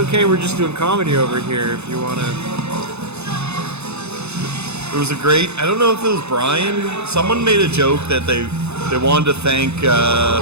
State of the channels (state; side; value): late; left; 0.81 ms